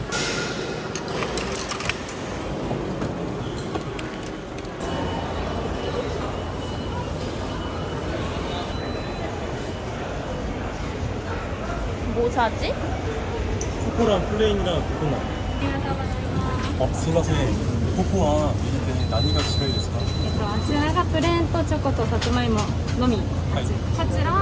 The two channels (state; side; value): identical; both; correlation 1.00